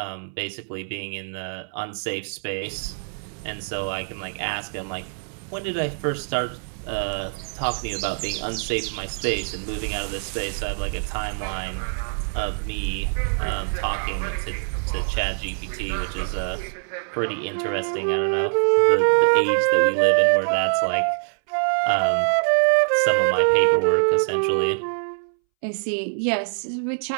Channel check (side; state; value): left; silent; 63 dB below the other